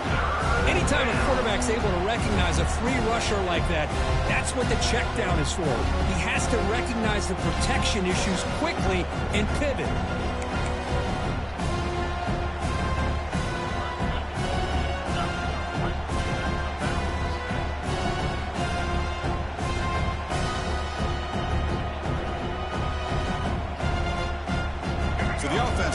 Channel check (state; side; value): identical; both; correlation 1.00